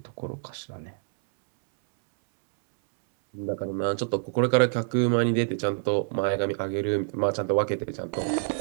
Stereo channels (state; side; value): silent; left; 60 dB below the other